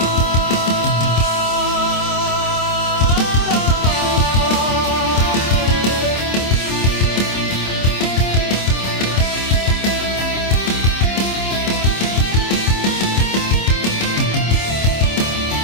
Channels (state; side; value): late; right; 26 ms